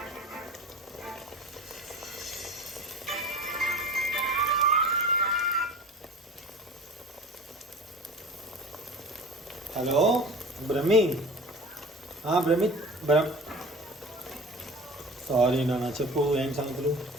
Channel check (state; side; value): normal; both; correlation 0.38